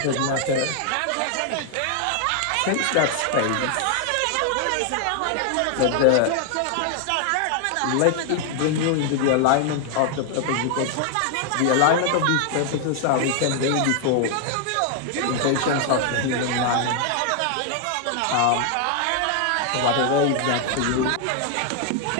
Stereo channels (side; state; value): both; different; correlation 0.00